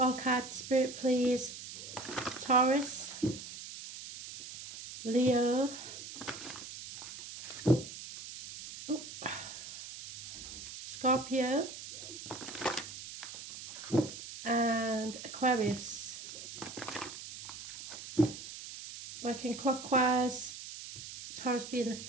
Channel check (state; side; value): noise; right; hiss, 11 dB below the sound